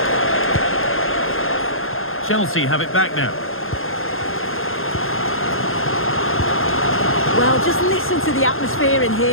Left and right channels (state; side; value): late; right; 0.60 ms